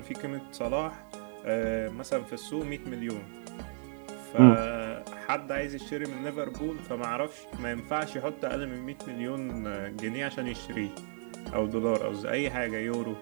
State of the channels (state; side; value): silent; left; 56 dB below the other